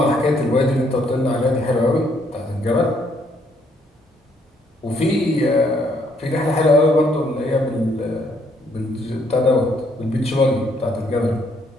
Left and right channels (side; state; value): both; normal; correlation 0.69